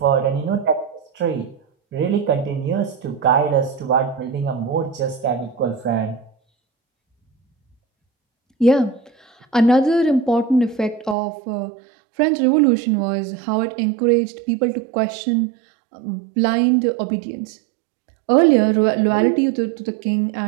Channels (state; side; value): drops out; left; at 11.2 s